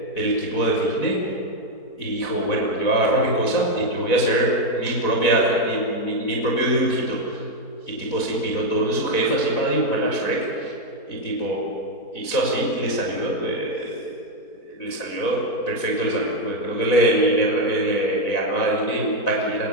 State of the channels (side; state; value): right; late; 4.1 ms